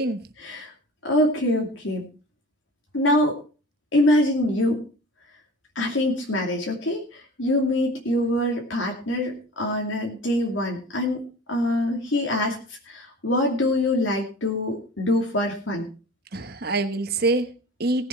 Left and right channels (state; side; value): normal; both; correlation 0.40